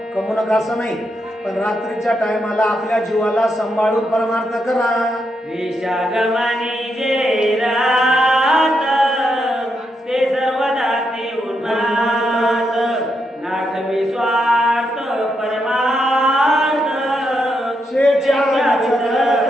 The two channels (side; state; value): both; normal; correlation 0.81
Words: कमवू नका असं नाही, पण रात्रीच्या टायमाला आपल्या जीवाला सांभाळून परमार्थ करा. विषागमनी जे रात ते सर्वदा ते उन्माद, नाठवी स्वार्थ परमार्थ शेच्या